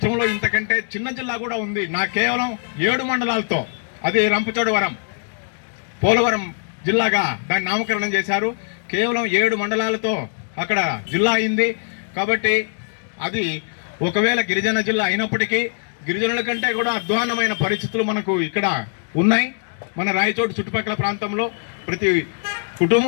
ఇంతకంటే చిన్న జిల్లా కూడా ఉంది. కేవలం 7 మండలాలతో, అది రంపచోడవరం, పోలవరం జిల్లాగా దాన్ని నామకరణం చేశారు. కేవలం 7 మండలాలతో అక్కడ జిల్లా అయింది. కాబట్టి అది ఒకవేళ గిరిజన జిల్లా అయినప్పటికీ గిరిజనుల కంటే కూడా అధ్వాన్నమైన పరిస్థితులు మనకు ఇక్కడ ఉన్నాయి. మన రాయచోటి చుట్టుపక్కల ప్రాంతంలో ప్రతి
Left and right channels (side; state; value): right; silent; 62 dB below the other